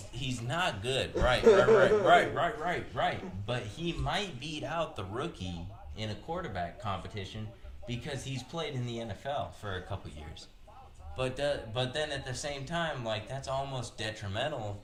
not good. Right. But he might beat out the rookie in a quarterback competition because he's played in the NFL for a couple years. But then at the same time, that's almost detrimental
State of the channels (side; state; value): both; identical; correlation 1.00